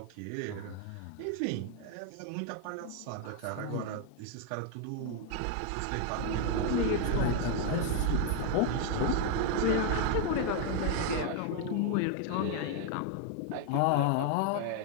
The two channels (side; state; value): both; different; correlation 0.01